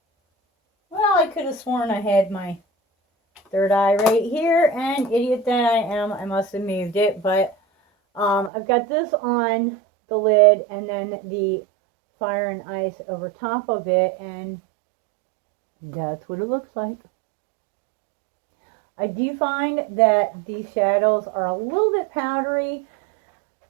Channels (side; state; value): left; drops out; at 8.5 s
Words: Well, I could have sworn I had my third eye right here, and idiot that I am, I must have moved it, but I've got this on the lid and then the Fire and Ice over top of it, and that's what it looks like. I do find that these shadows are a little bit powdery.